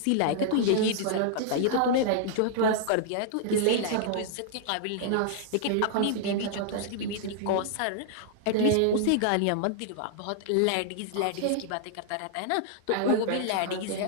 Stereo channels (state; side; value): different; both; correlation -0.01